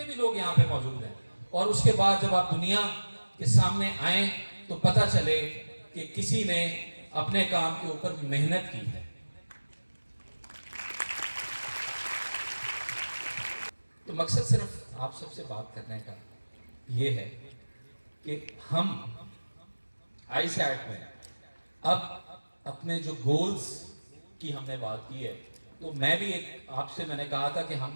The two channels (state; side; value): inverted; both; correlation -1.00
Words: भी लोग यहाँ पे मौजूद हैं, और उसके बाद जब आप दुनिया के सामने आए तो पता चले कि किसी ने अपने काम के ऊपर मेहनत की है। तो मकसद सिर्फ आप सबसे बात करने का ये है कि हम आईसैट में अब अपने जो गोल्स की हमने बात की है, तो मैं भी आपसे मैंने कहा था कि हम